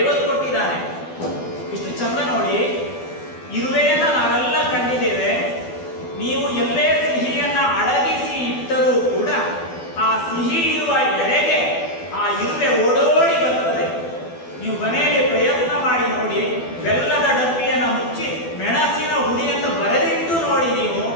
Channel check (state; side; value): late; right; 12 ms